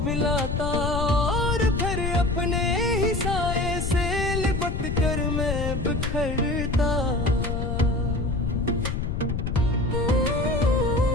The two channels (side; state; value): left; noise; rumble, 1 dB below the sound